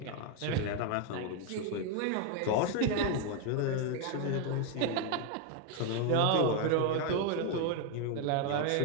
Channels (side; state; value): both; different; correlation 0.01